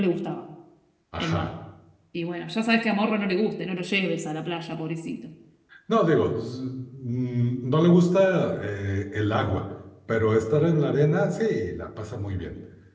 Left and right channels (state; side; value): identical; both; correlation 1.00